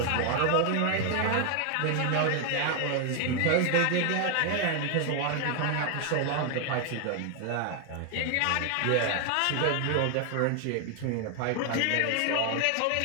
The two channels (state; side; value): different; both; correlation 0.01